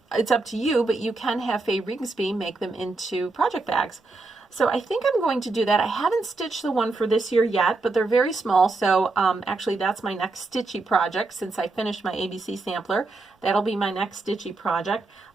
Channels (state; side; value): quieter; left; 3.5 dB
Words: it's up to you, but you can have Faye Rigsby make them into project bags. So I think I'm going to do that. I haven't stitched the one for this year yet, but they're very small. So actually that's my next stitchy project since I finished my ABC sampler. That'll be my next stitchy project.